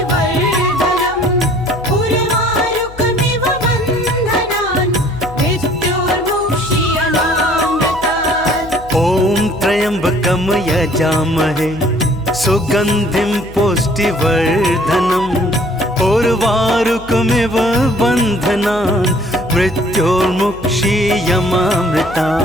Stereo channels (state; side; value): noise; left; hum, 18 dB below the sound